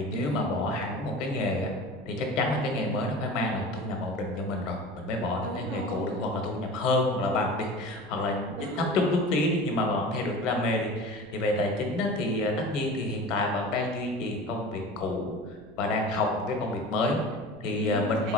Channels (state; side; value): noise; right; rumble, 25 dB below the sound